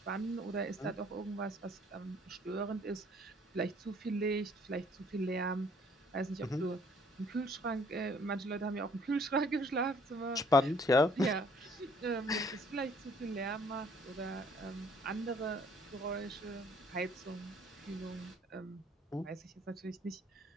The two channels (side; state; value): both; normal; correlation 0.60